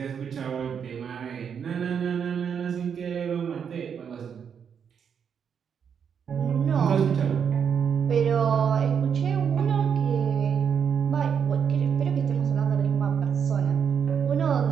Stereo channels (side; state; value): left; quieter; 7.4 dB